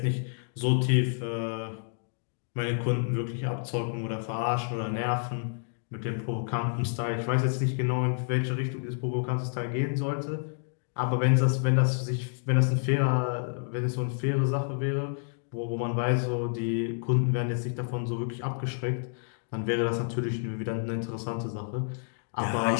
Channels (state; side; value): silent; right; digital silence